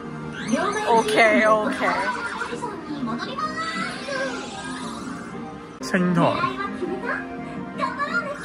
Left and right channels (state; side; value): identical; both; correlation 1.00